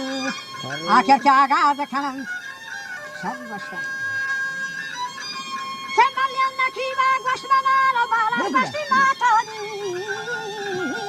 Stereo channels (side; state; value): both; identical; correlation 1.00